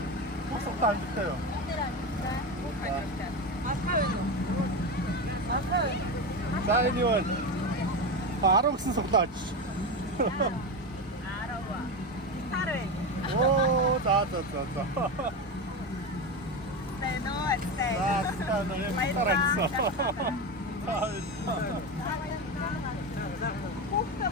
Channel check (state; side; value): normal; both; correlation 0.19